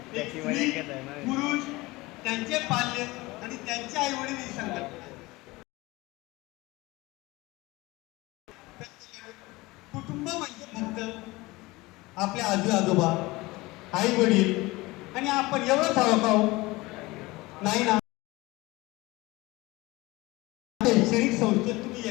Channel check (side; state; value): right; quieter; 21.5 dB